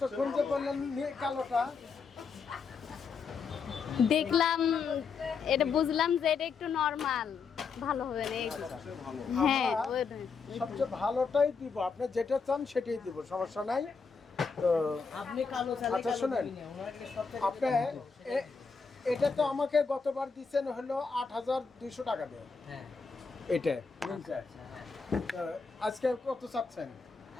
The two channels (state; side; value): quieter; right; 5.2 dB